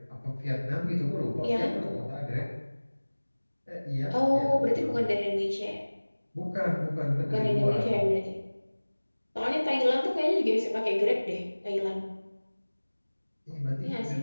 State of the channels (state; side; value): inverted; both; correlation -1.00